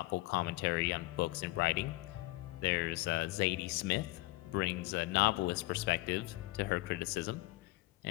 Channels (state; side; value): quieter; right; 20.2 dB